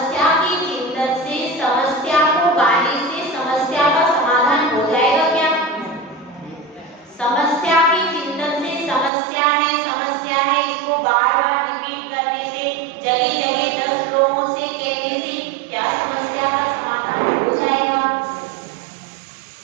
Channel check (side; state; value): left; drops out; at 9.1 s